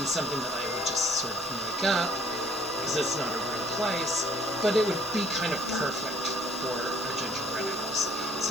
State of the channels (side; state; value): both; normal; correlation 0.59